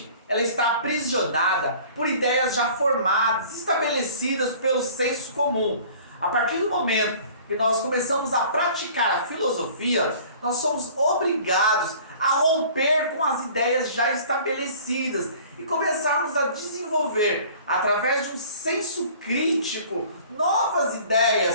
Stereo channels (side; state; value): both; inverted; correlation -0.48